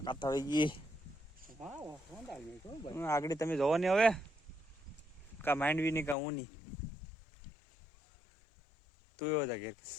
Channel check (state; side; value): drops out; right; at 6.2 s